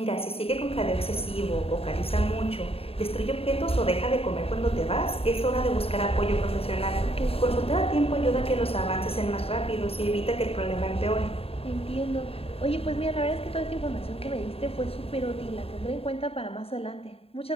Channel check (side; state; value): right; late; 0.28 ms